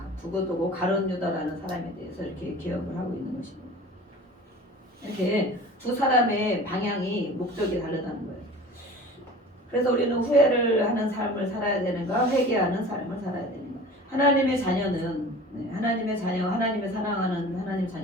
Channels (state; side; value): normal; both; correlation 0.41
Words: 두고두고 가룟 유다라는 사람에 대해서 이렇게 기억을 하고 있는 것입니다. 이렇게 두 사람의 방향이 목적이 다르다는 거예요. 그래서 우리는 후회를 하는 삶을 살아야 되는가 회개하는 삶을 살아야 되는가. 하나님의 자녀는 하나님의 자녀 하나님의 사랑하는 하나님